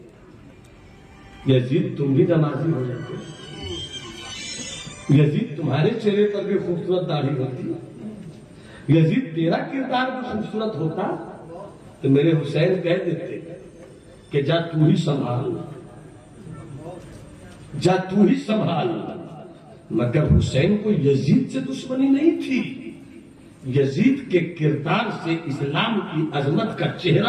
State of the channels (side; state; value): both; identical; correlation 1.00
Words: यजीद तुम भी नमाजी हो जाते, यजीद तुम्हारे चेहरे पर भी खूबसूरत दाढ़ी होती, यजीद तेरा किरदार भी खूबसूरत होता तो मेरे हुसैन कह देते कि जा तू ही संभाल, जा तू ही संभाल। मगर हुसैन को यजीद से दुश्मनी नहीं थी, यजीद के किरदार से इस्लाम की अजमत का